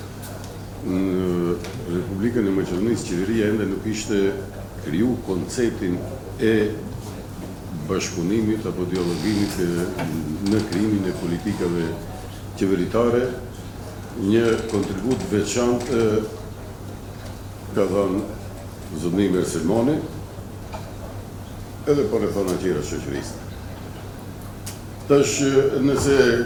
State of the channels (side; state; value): both; identical; correlation 1.00